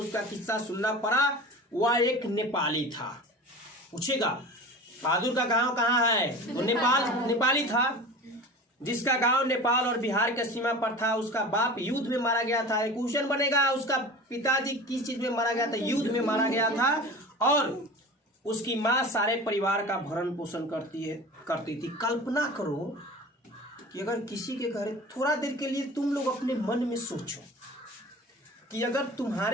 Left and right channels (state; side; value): normal; both; correlation 0.36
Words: किस्सा सुनना पड़ा। वह एक नेपाली था। पूछेगा बहादुर का गांव कहाँ है, वो नेपाली था, जिसका गांव नेपाल और बिहार के सीमा पर था। उसका बाप युद्ध में मारा गया था। एक क्वेश्चन बनेगा, उसका पिताजी किस चीज में मारा गया था, युद्ध में मारा गया था। और उसकी माँ सारे परिवार का भरण पोषण करती थी। कल्पना करो कि अगर किसी के घर, थोड़ा देर के लिए तुम लोग अपने मन में सोचो कि अगर